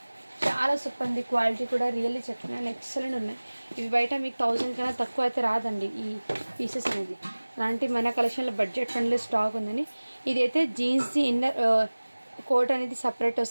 చాలా సూపర్ ఉంది క్వాలిటీ కూడా రియల్లీ చెప్తున్నాను ఎక్సలెంట్ ఉన్నాయి ఇవి బయట మీకు 1000 కన్నా తక్కువ అయితే రాదండి ఈ పీసెస్ అనేది అలాంటి మన కలెక్షన్లో బడ్జెట్ ఫ్రెండ్లీ స్టాక్ ఉందండి ఇదైతే జీన్స్ది ఇన్నర్ కోట్ అనేది సపరేట్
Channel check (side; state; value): both; inverted; correlation -1.00